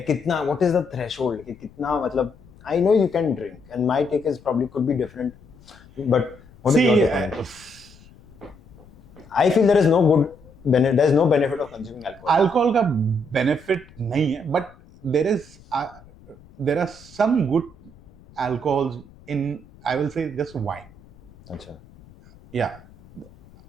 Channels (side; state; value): left; noise; rumble, 24 dB below the sound